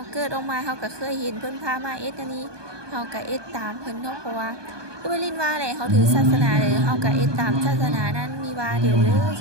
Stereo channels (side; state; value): left; late; 1.2 ms